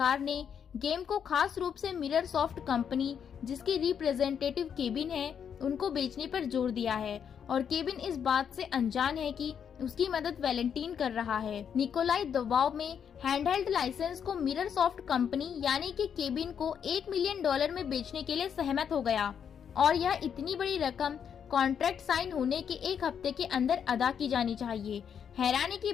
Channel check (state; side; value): quieter; right; 7.8 dB